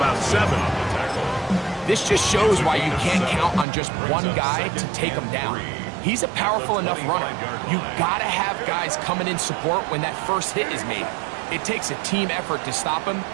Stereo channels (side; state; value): left; drops out; at 3.7 s